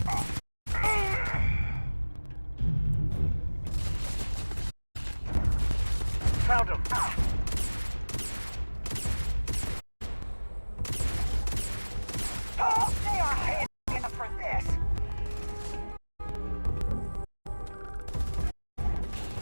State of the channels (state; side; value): inverted; both; correlation -1.00